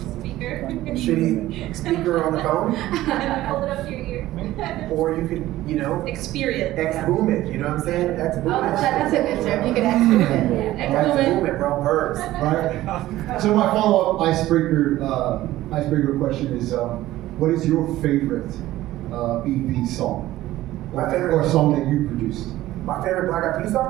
Speaker. shitty speaker on the phone, Hold it up to your ear. or you could Experience. X-boom it. You know what I'm saying? X-boom Oh, it. that's a good term. You can X-boom it. X-boom it, bro. Verbs. Right? So my follow-up icebreaker question is, what is your favorite BEP song? My favorite- or song that you produced? My favorite Black Eyed Peas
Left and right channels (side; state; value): left; quieter; 15.6 dB